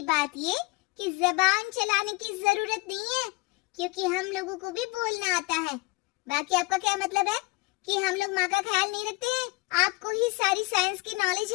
बात ये कि जबान चलाने की जरूरत नहीं है, क्योंकि हम लोगों को भी बोलना आता है। बाकी आपका क्या मतलब है कि हम लोग माँ का ख्याल नहीं रखते हैं? आपको ही सारी साइंस की नॉलेज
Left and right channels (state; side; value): quieter; right; 24.6 dB